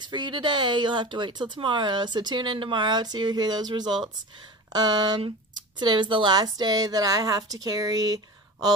for you today. You'll have to wait till tomorrow. So tune in tomorrow to hear those results. Today was the last day that I have to carry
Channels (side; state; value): both; normal; correlation 0.32